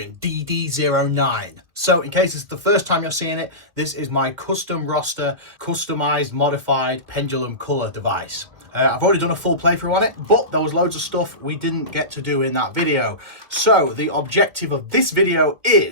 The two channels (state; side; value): late; left; 2.0 ms